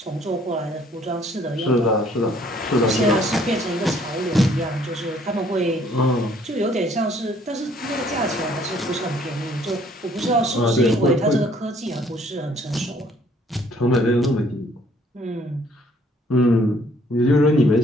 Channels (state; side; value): normal; both; correlation 0.62